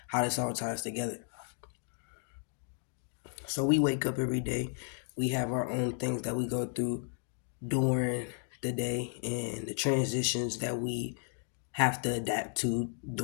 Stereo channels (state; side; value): silent; right; 55 dB below the other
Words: how this all ties together. So we wake up every day. We have our own things that we go through during the day and the transitions that we have to adapt to